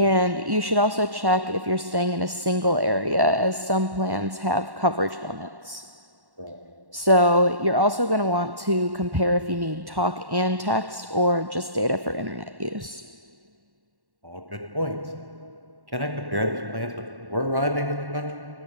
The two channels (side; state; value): left; late; 1.1 ms